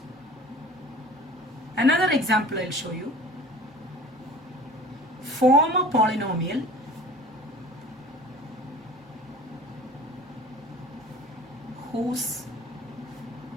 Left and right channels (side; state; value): both; normal; correlation 0.43